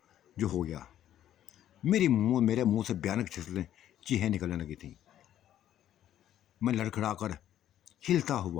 जो हो गया। मेरे मुंह से भयानक चीखें निकलने लगी थी। मैं लड़खड़ाकर हिलता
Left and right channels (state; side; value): quieter; right; 11.5 dB